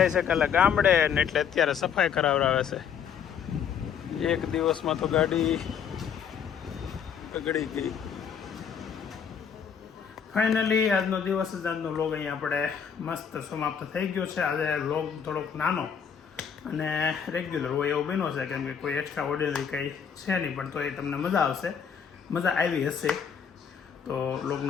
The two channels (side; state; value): right; quieter; 7.4 dB